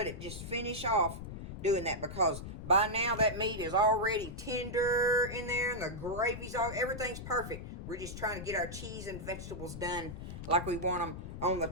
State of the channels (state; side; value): noise; left; rumble, 9 dB below the sound